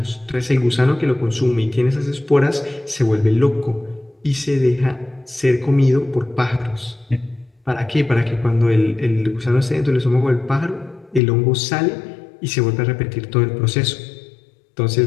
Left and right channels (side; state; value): right; drops out; at 11.2 s